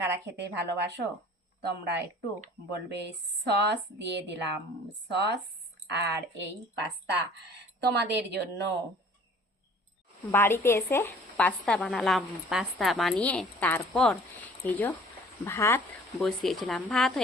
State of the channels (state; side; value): normal; both; correlation 0.51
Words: খেতে ভালোবাসো তোমরা একটু বলবে। সস দিয়ে দিলাম, সস আর এই পাস্তা তোমাদের জন্য। বাড়িতে এসে পাস্তা বানালাম, পাস্তা বানিয়ে তারপর এই যে ভাত বসিয়েছিলাম। ভাত